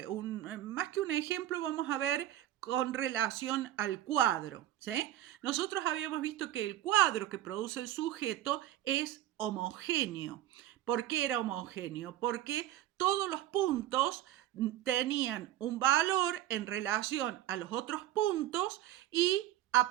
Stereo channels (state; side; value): quieter; left; 13.7 dB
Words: que un ejemplo, vamos a ver con relación al cuadro, ¿sí? Nosotros habíamos visto que el cuadro que produce el sujeto es homogéneo. ¿Por qué era homogéneo? Porque todos los puntos tenían un valor en relación a los otros puntos y a